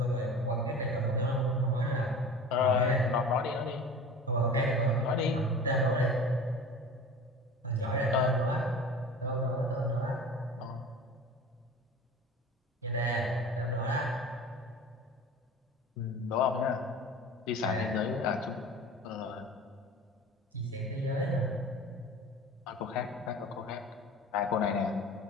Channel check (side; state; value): both; normal; correlation 0.38